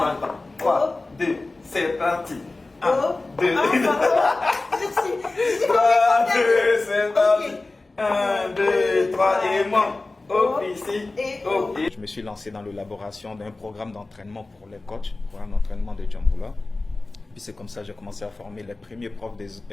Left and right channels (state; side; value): quieter; right; 3.2 dB